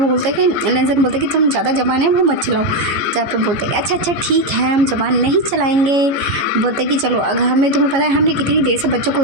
बोलते हैं कि लेंसन बोलते हैं कि तुम ज़्यादा जबान है वो मत चलाओ। जहाँ पे बोलते हैं अच्छा अच्छा ठीक है हम जबान नहीं चलाएंगे। बोलते हैं कि चलो अगर हमें तुम्हें पता है हमने कितनी देर से बच्चों को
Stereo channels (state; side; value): late; left; 15 ms